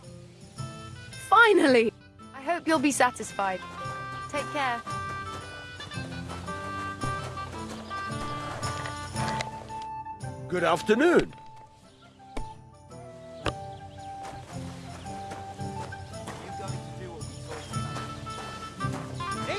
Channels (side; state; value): both; identical; correlation 1.00